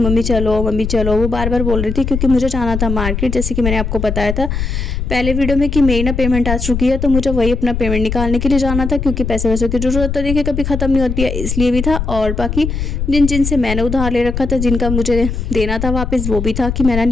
चलो। वो बार बार बोल रही थी क्योंकि मुझे जाना था मार्केट, जैसे कि मैंने आपको बताया था पहले वीडियो में कि मेरी ना पेमेंट आ चुकी है, तो मुझे वही अपना पेमेंट निकालने के लिए जाना था, क्योंकि पैसे वैसे की ज़रूरत तो देखिए कभी ख़त्म नहीं होती है, इसलिए भी था। और बाकी जिनसे मैंने उधार ले रखा था, जिनका मुझे देना था वापस, वो भी था कि मैं ना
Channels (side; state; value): left; noise; rumble, 3 dB below the sound